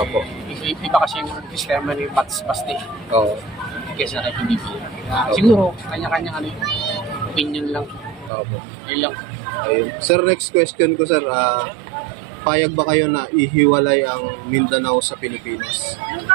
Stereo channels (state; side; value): drops out; left; at 8.3 s